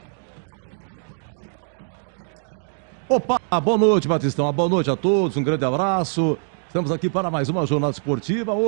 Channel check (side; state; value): left; silent; 57 dB below the other